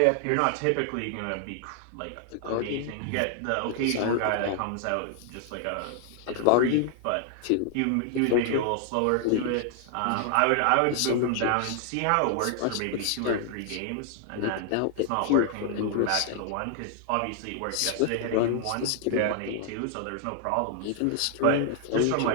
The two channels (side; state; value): both; different; correlation 0.00